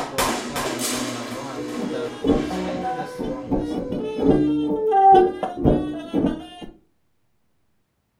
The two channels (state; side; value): identical; both; correlation 1.00